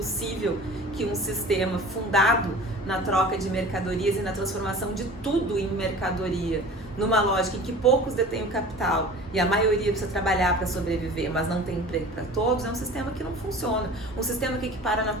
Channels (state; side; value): normal; both; correlation 0.41